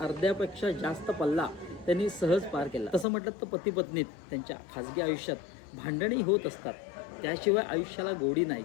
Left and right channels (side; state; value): right; drops out; at 3.1 s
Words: जास्त पल्ला त्यांनी सहज पार केला. तसं म्हटलं तर पती पत्नीत त्यांच्या खाजगी आयुष्यात भांडणी होत असतात, त्याशिवाय आयुष्याला गोडी नाही